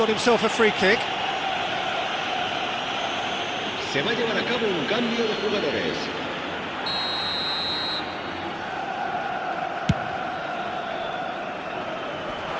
himself a free kick. Se va a llevar a cabo un cambio de jugadores.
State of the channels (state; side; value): identical; both; correlation 1.00